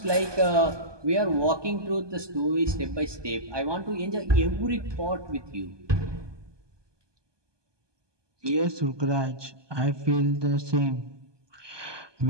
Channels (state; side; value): late; left; 1.2 ms